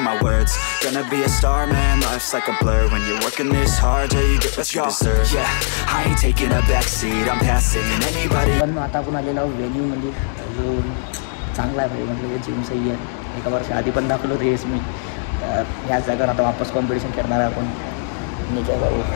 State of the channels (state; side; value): silent; right; 66 dB below the other